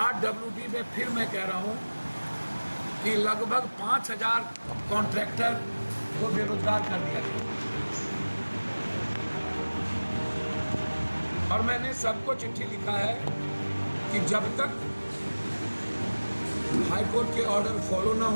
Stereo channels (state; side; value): inverted; both; correlation -1.00